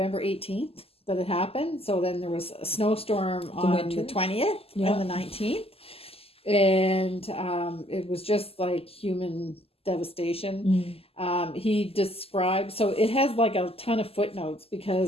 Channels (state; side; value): late; right; 0.28 ms